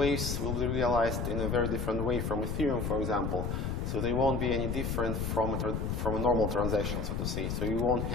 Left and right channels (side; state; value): left; noise; rumble, 1 dB below the sound